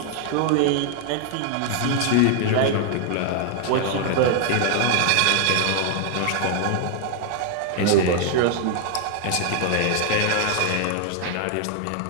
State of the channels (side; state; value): both; different; correlation 0.00